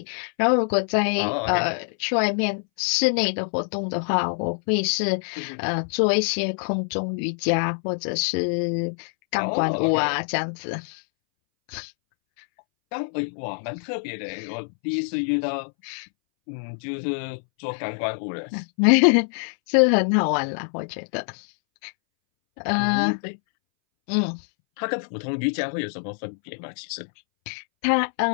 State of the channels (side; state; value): right; silent; 62 dB below the other